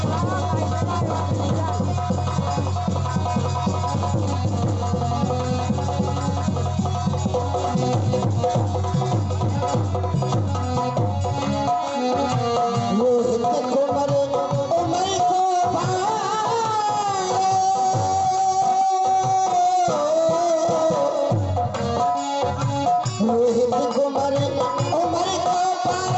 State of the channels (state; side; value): identical; both; correlation 1.00